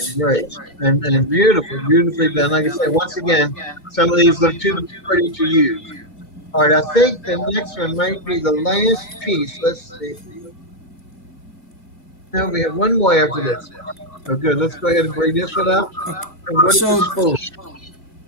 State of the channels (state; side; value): late; right; 2.2 ms